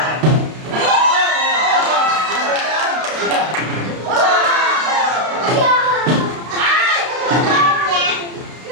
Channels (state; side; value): late; left; 32 ms